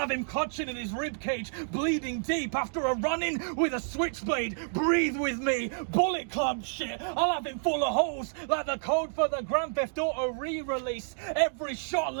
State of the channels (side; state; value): left; silent; digital silence